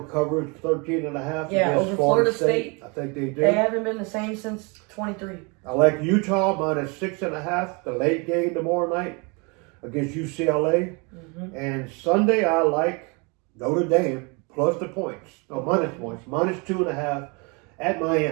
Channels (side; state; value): left; quieter; 30.9 dB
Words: covers 13.5 against over Florida State. I think they do. They haven't been the same since 23. I like Utah -6.5, the late game tomorrow night against UCLA. And Sunday I like Notre Dame plus the points. No, minus points. -2.5 at